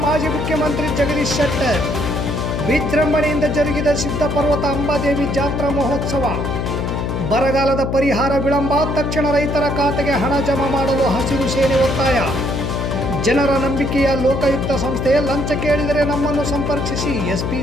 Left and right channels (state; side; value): noise; left; hum, 2 dB below the sound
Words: ಮಾಜಿ ಮುಖ್ಯಮಂತ್ರಿ ಜಗದೀಶ್ ಶೆಟ್ಟರ್. ವಿಜೃಂಭಣೆಯಿಂದ ಜರುಗಿದ ಸಿದ್ಧಪರ್ವತ ಅಂಬಾದೇವಿ ಜಾತ್ರಾ ಮಹೋತ್ಸವ. ಬರಗಾಲದ ಪರಿಹಾರ ವಿಳಂಬ, ತಕ್ಷಣ ರೈತರ ಖಾತೆಗೆ ಹಣ ಜಮಾ ಮಾಡಲು ಹಸಿರು ಸೇನೆ ಒತ್ತಾಯ. ಜನರ ನಂಬಿಕೆಯ ಲೋಕಾಯುಕ್ತ ಸಂಸ್ಥೆ, ಲಂಚ ಕೇಳಿದರೆ ನಮ್ಮನ್ನು ಸಂಪರ್ಕಿಸಿ ಎಸ್ಪಿ